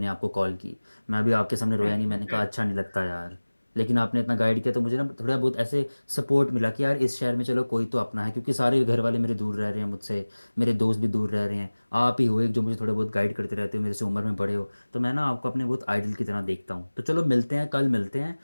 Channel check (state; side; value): inverted; both; correlation -1.00